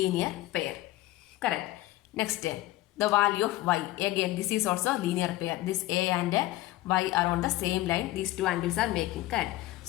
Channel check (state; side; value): quieter; right; 17.0 dB